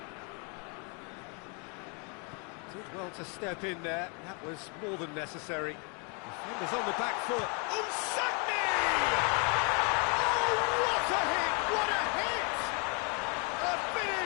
Did well to step in there. That was more than necessary. Defenders on the back foot. Unsakni! Oh, what a hit! What a hit! A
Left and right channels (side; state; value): right; quieter; 35.5 dB